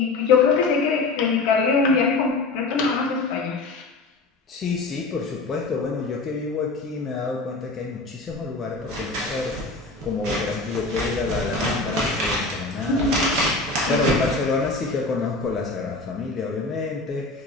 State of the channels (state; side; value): quieter; right; 3.5 dB